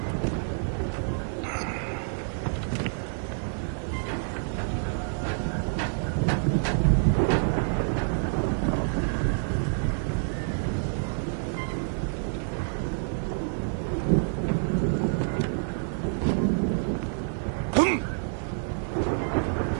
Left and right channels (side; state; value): left; silent; digital silence